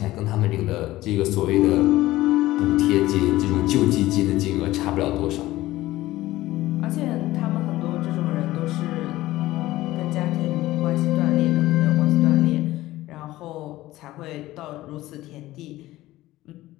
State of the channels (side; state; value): right; quieter; 16.7 dB